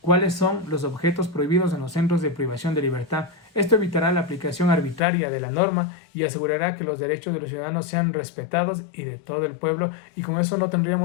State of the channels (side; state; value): right; drops out; at 5.0 s